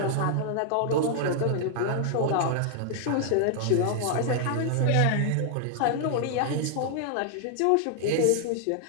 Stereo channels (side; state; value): both; different; correlation 0.00